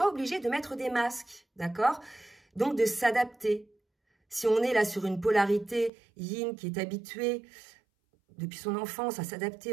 obligée de mettre des masques, d'accord? Donc de s'adapter. Si on est là sur une polarité yin qui est habituée depuis son enfance à s'adapter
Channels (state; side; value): drops out; left; at 5.9 s